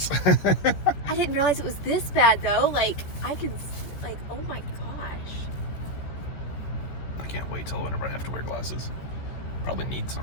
I didn't realize it was this bad though. Like I could, like, oh my gosh. I can't wait till whenever I have to wear glasses. Probably need some.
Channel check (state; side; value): late; right; 14 ms